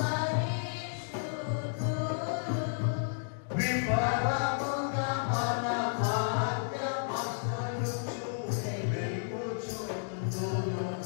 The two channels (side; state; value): right; silent; digital silence